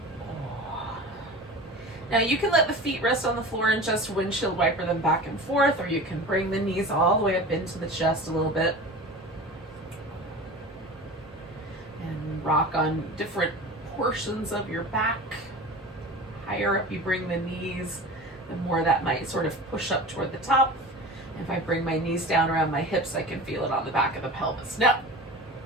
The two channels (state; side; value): normal; both; correlation 0.34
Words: Now you can let the feet rest on the floor and just windshield wiper them back and forth, or you can bring the knees all the way up into the chest a little bit and rock on different portions of your back. Higher up you bring the knees, the more that might sort of push up toward the top. If I bring my knees down around my hips, I can feel it on the back of the pelvis. Now,